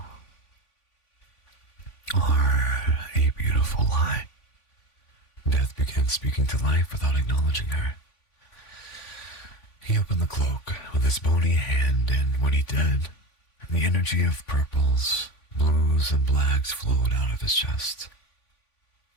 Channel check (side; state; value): right; late; 3.5 ms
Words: are a beautiful lie. Death began speaking to life without acknowledging her. He opened the cloak with his bony hand, and when he did, the energy of purples, blues, and blacks flowed out of his chest.